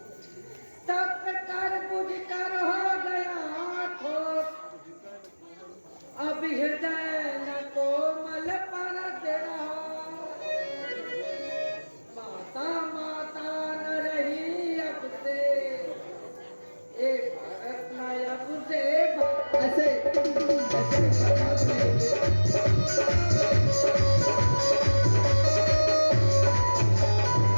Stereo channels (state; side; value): inverted; both; correlation -1.00